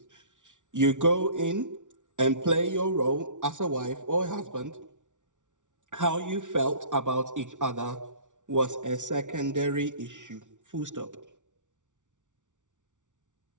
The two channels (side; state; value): left; late; 0.87 ms